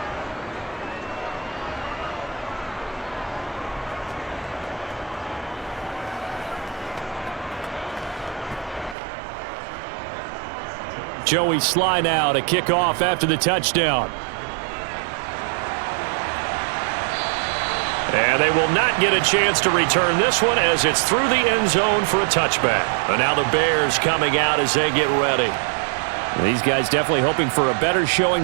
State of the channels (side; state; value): left; drops out; at 9.0 s